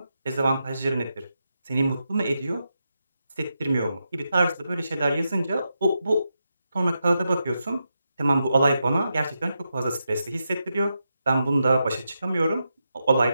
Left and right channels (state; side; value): inverted; both; correlation -0.86